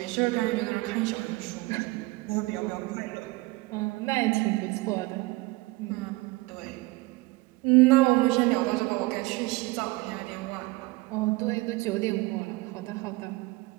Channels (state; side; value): quieter; left; 22.1 dB